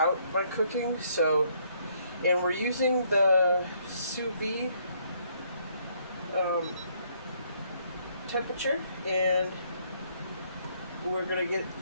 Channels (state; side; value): inverted; both; correlation -0.68